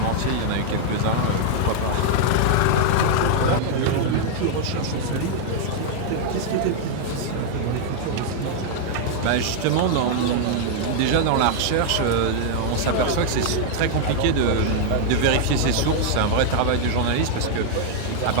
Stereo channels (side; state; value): both; different; correlation -0.01